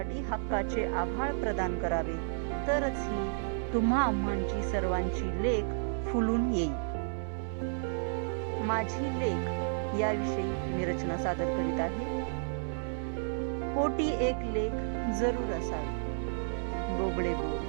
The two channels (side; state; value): left; silent; 57 dB below the other